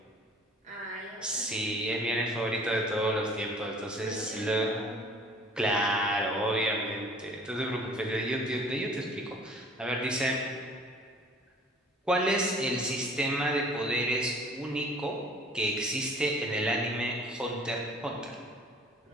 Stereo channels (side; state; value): both; normal; correlation 0.51